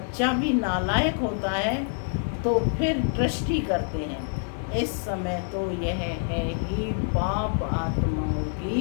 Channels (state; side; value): silent; right; 61 dB below the other